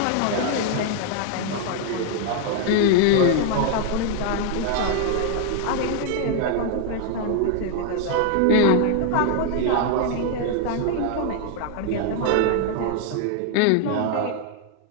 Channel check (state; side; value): different; both; correlation 0.00